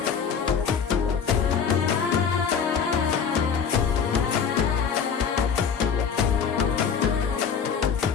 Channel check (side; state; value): right; quieter; 6.7 dB